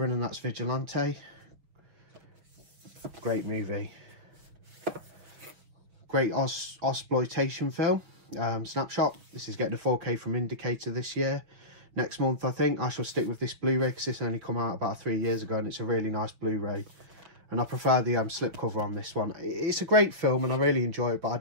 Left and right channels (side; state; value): left; late; 6.2 ms